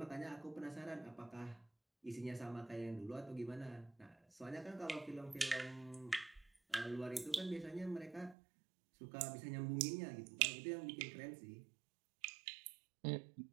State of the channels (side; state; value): left; drops out; at 8.3 s